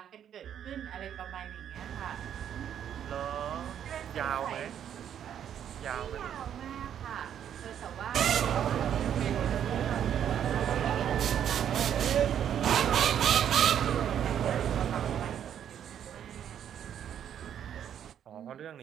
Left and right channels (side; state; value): left; quieter; 9.5 dB